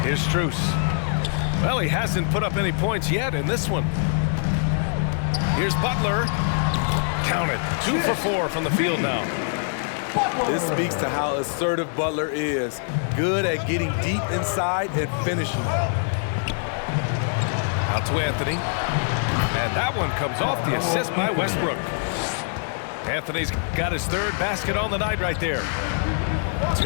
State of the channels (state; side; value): silent; right; digital silence